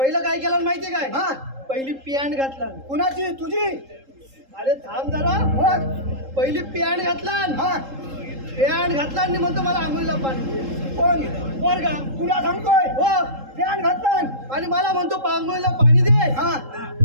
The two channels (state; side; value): late; left; 3.7 ms